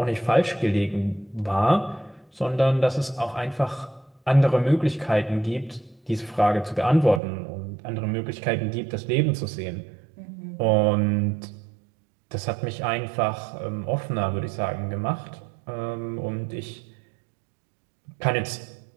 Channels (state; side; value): drops out; left; at 7.2 s